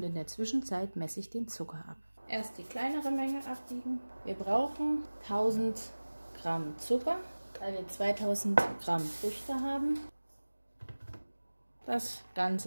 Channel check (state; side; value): inverted; both; correlation -1.00